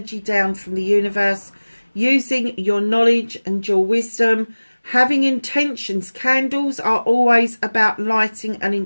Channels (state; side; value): inverted; both; correlation -1.00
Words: down from the universe, using your knowledge and your wisdom, having intentions. Candles are always about lighting an